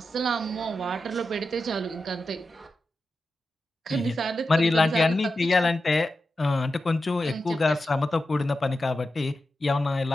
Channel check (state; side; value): normal; both; correlation 0.91